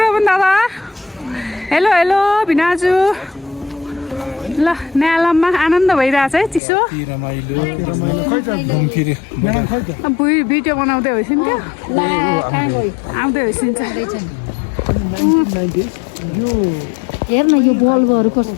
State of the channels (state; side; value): drops out; right; at 6.6 s